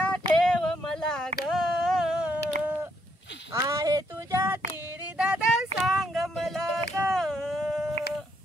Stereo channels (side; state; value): both; normal; correlation 0.74